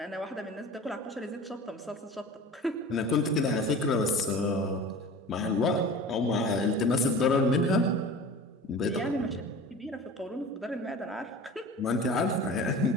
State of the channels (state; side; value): normal; both; correlation 0.37